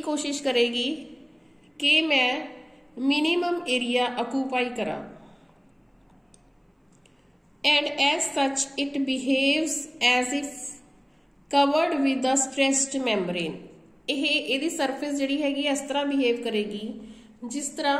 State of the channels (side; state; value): both; identical; correlation 1.00